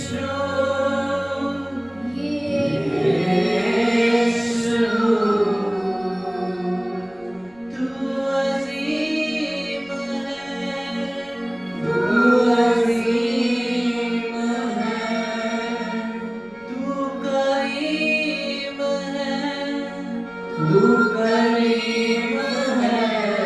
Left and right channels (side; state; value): right; noise; rumble, 28 dB below the sound